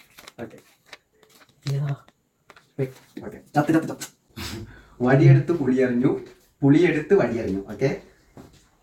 ഓക്കെ ഓക്കെ, വടിയെടുത്ത് പുളിയറിഞ്ഞു, പുളിയെടുത്ത് വടിയറിഞ്ഞു. ഓക്കെ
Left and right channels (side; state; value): both; identical; correlation 1.00